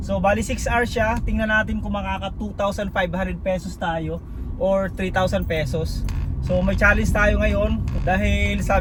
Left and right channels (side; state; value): both; identical; correlation 1.00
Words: So bali 6 hours siya. Tingnan natin kung makaka 2,500 pesos tayo or 3,000 pesos. So may challenge tayo ngayon dahil